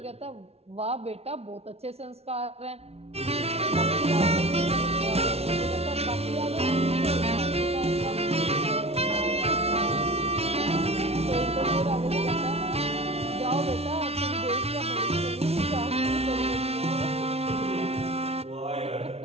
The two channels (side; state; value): left; late; 0.30 ms